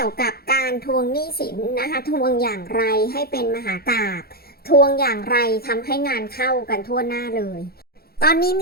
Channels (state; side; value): late; right; 0.45 ms